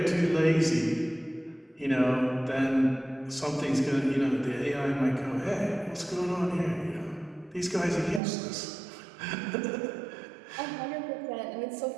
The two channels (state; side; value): drops out; left; at 8.2 s